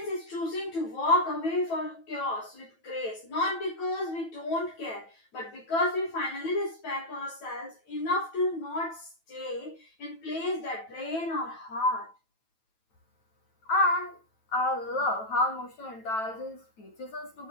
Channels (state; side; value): late; right; 9.1 ms